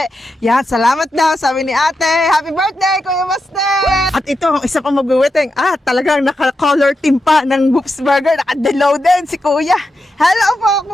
Yan, salamat daw, sabi ni ate. Happy birthday, Kuya Baste! At ito, ang isa pang magwiwiting. Talagang naka-color team pa ng Whoops Burger. Naka-delaw din si Kuya. Hello po,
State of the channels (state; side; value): normal; both; correlation 0.87